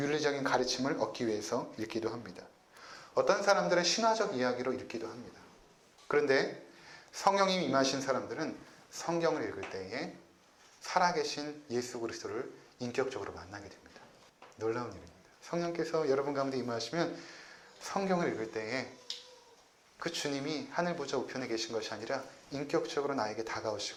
가르침을 얻기 위해서 읽기도 합니다. 어떤 사람들은 신화적 이야기로 읽기도 합니다. 그런데 성령님이 임하신 사람들은 성경을 읽을 때에 살아계신 예수 그리스도를 인격적으로 만나게 됩니다. 놀라운 일입니다. 성령께서 여러분 가운데 임하시면 성경을 읽을 때에 그 주님이 하늘 보좌 우편에 계신 것이 아니라 인격적으로 나에게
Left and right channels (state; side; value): identical; both; correlation 1.00